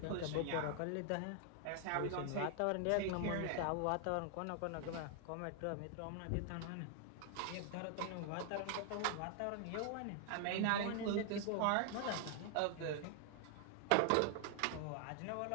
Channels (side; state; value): both; different; correlation 0.00